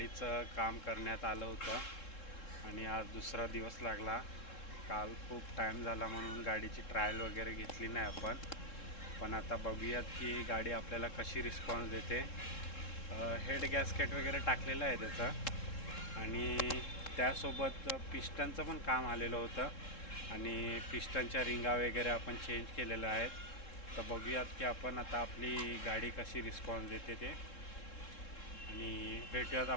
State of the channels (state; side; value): late; right; 3.7 ms